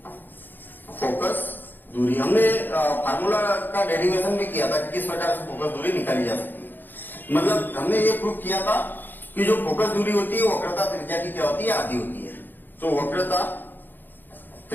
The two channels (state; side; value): late; right; 0.091 ms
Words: दूरी। हमने फार्मूला का डेरिवेशन भी किया था कि किस प्रकार से फोकस दूरी निकाली जा सकती है। मतलब हमने ये प्रूव किया था कि जो फोकस दूरी होती है वक्रता त्रिज्या की क्या होती है, आधी होती है। तो वक्रता